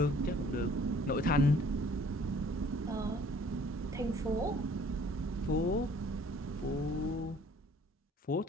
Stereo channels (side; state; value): both; normal; correlation 0.55